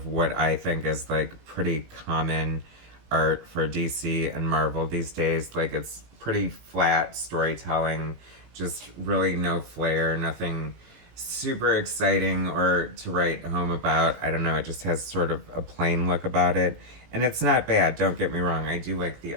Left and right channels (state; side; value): late; left; 18 ms